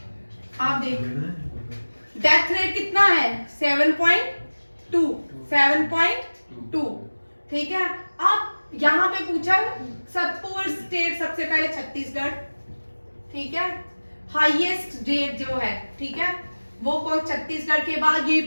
आप देखो, डेथ रेट कितना है? 7.2, ठीक है। अब यहाँ पे पूछा पुअर स्टेट, सबसे पहले छत्तीसगढ़, ठीक है। हाईएस्ट रेट जो है, ठीक है, वो कौन? छत्तीसगढ़ के बाद ये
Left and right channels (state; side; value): inverted; both; correlation -1.00